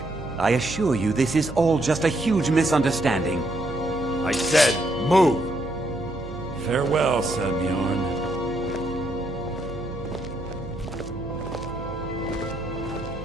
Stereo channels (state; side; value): noise; right; hum, 11 dB below the sound